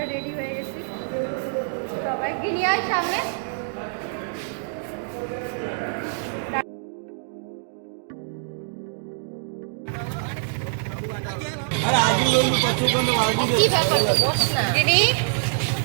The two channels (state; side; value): silent; left; digital silence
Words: রেডি হয়ে গেছি সবাই। গিনিয়ার সামনে